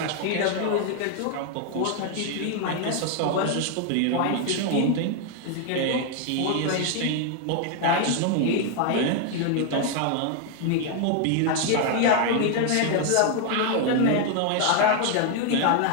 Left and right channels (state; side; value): different; both; correlation 0.00